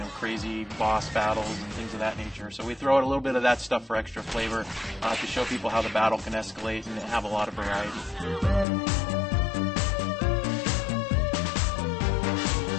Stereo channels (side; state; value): right; drops out; at 8.7 s